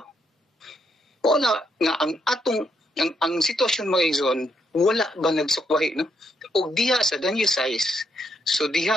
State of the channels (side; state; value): both; normal; correlation 0.77